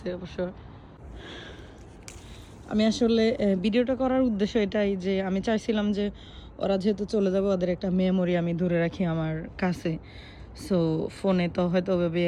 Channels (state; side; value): identical; both; correlation 1.00